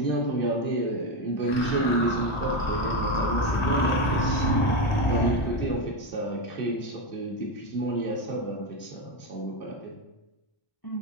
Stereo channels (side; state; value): right; late; 1.4 ms